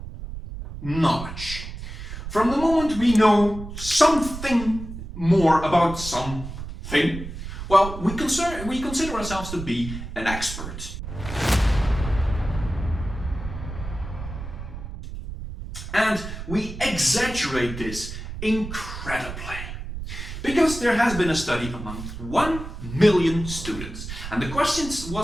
Knowledge. From the moment we know something more about something, well, we consider ourselves to be an expert. And we exaggerate this incredibly. Because there has been a study among 1 million students. And the question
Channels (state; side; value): noise; right; rumble, 9 dB below the sound